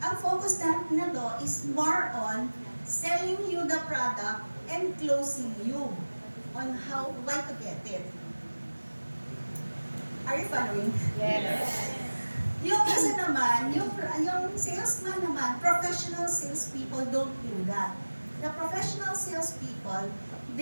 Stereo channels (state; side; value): inverted; both; correlation -1.00